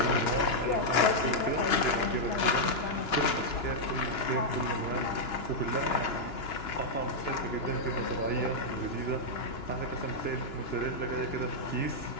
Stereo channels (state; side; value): late; right; 2.9 ms